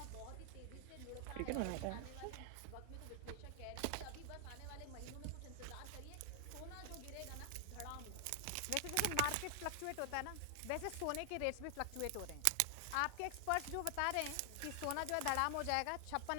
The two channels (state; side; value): different; both; correlation 0.00